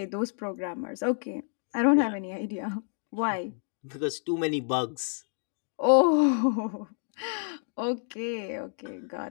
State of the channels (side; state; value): right; silent; 58 dB below the other